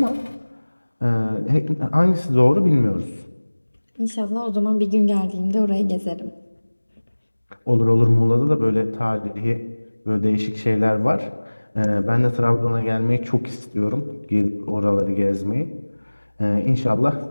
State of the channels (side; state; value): both; inverted; correlation -1.00